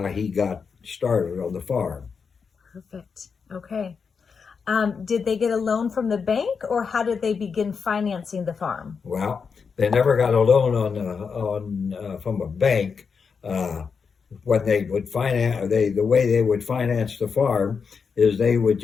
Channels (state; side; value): quieter; right; 5.7 dB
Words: he got started on the farm. Perfect. Okay. Did they get a loan from the bank, or how did they begin financing the farm? Well, they never got a loan on from a bank. Uh, when they would finance, the way they would finance the farm is they would